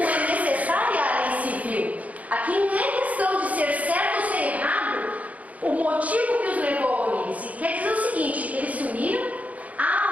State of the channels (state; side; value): late; left; 0.071 ms